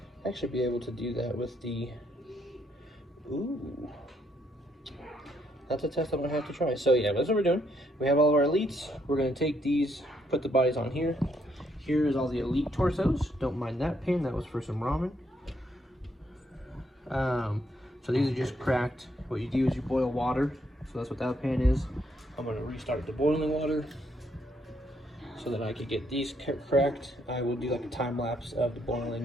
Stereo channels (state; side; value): normal; both; correlation 0.73